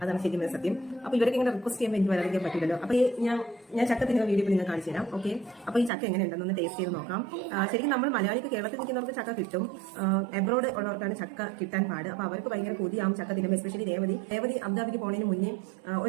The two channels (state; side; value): drops out; left; at 5.9 s